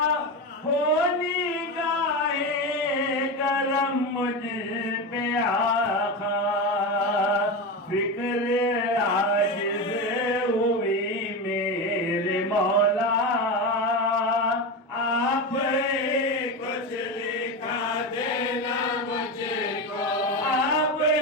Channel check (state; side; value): normal; both; correlation 0.19